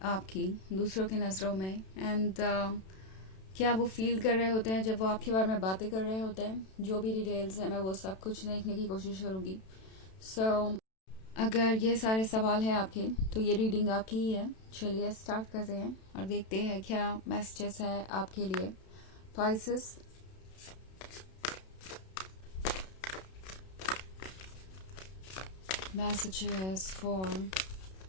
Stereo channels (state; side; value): late; right; 32 ms